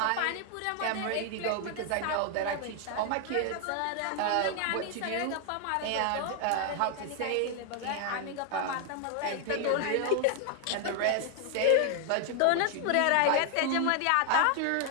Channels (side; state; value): both; different; correlation 0.00